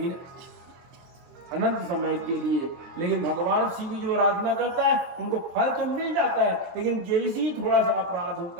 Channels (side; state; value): left; late; 23 ms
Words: अनंत समय के लिए। लेकिन भगवान शिव की जो आराधना करता है उनको फल तो मिल जाता है, लेकिन जैसे ही थोड़ा सा अपराध